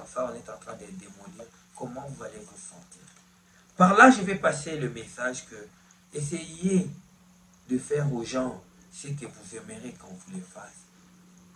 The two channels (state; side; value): identical; both; correlation 1.00